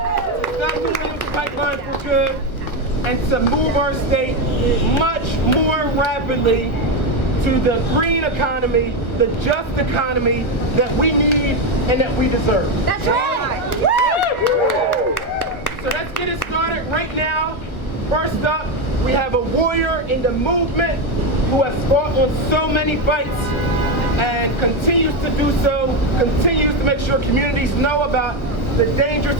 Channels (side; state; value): right; late; 1.3 ms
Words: stop the Williams pipeline for good and to move our state much more rapidly to the green economy, the just economy that we need and that we deserve. That's right. So let's get it started right now. First up, we have a warrior in the movement who has fought on so many fights and continues to do so, continues to make sure communities know about the dangers